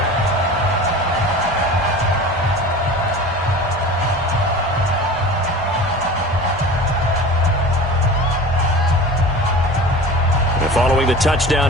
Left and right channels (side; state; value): both; normal; correlation 0.36